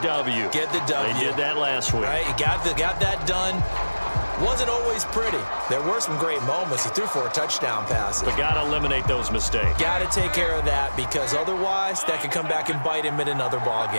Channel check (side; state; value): both; inverted; correlation -1.00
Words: Get the W. They did that last week. Right, you got that done. Wasn't always pretty. There were some great moments. He threw 4 touchdown passes. But got to eliminate those mistakes. Got to take care of that, because otherwise that could come back and bite him in another ball